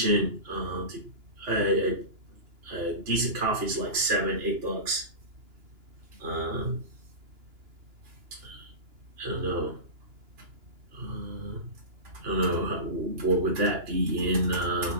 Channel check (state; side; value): late; left; 2.9 ms